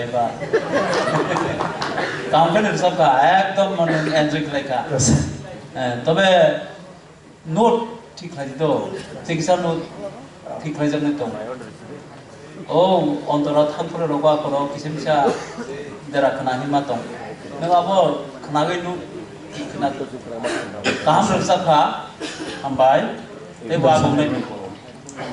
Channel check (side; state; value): both; identical; correlation 1.00